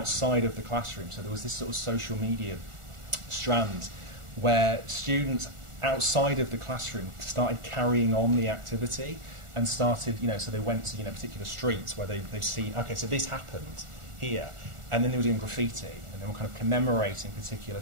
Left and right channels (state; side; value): late; left; 1.4 ms